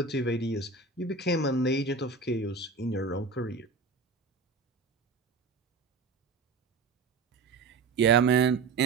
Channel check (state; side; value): quieter; left; 4.3 dB